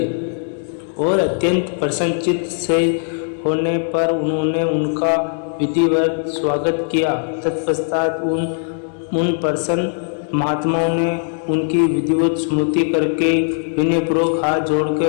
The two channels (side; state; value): right; silent; 66 dB below the other